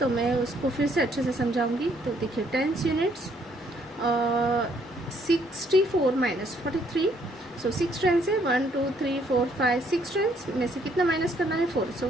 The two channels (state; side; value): normal; both; correlation 0.67